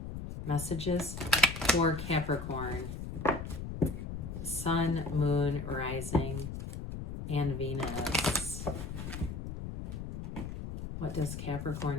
Messages for Capricorn. Sun, Moon, Rising, and Venus. What does Capricorn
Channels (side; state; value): left; noise; rumble, 7 dB below the sound